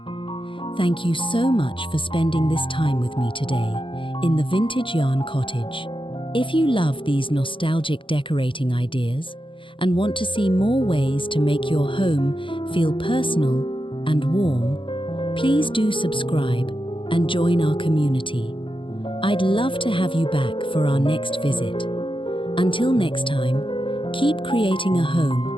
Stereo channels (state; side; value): late; right; 0.25 ms